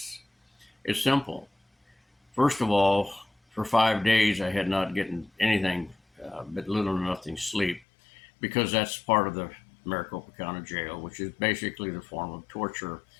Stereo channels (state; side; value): drops out; right; at 7.8 s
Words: it's simple. First of all, for 5 days I had not gotten anything but little or nothing sleep because that's part of the Maricopa County Jail, which is basically the form of torture